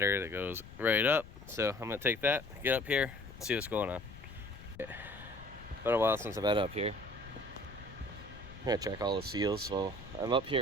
that goes right up, so I'm gonna take that, get up here, and see what's going on. Been a while since I've been up here. I'm gonna check all the seals, so I'm up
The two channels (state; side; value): noise; left; rumble, 17 dB below the sound